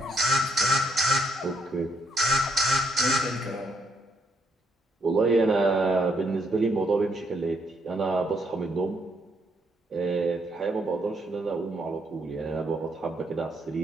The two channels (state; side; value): normal; both; correlation 0.73